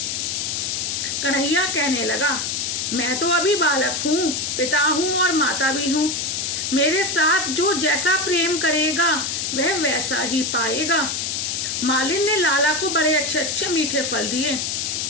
कन्हैया कहने लगा, मैं तो अभी बालक हूँ, पिता हूँ और माता भी हूँ। मेरे साथ जो जैसा प्रेम करेगा वह वैसा ही पाएगा। मालिन ने लाला को बड़े अच्छे अच्छे मीठे फल दिए।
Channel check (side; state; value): left; noise; hiss, 1 dB below the sound